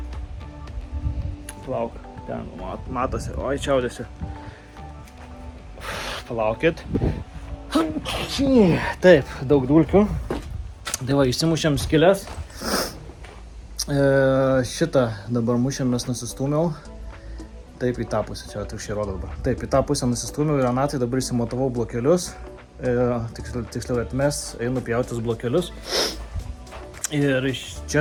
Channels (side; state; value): both; identical; correlation 1.00